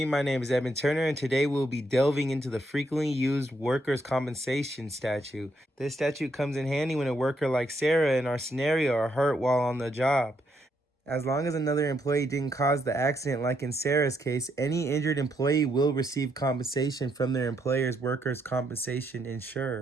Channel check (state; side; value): normal; both; correlation 0.76